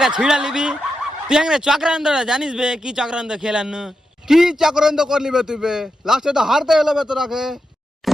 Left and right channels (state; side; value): normal; both; correlation 0.87